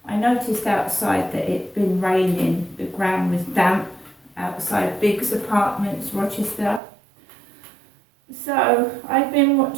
I noticed outside that it'd been raining, the ground was damp outside Biggs Apartments, Rochester. So I'd been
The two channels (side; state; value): left; drops out; at 6.8 s